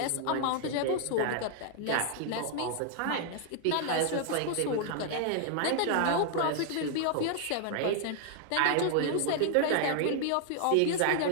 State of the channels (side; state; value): both; different; correlation 0.00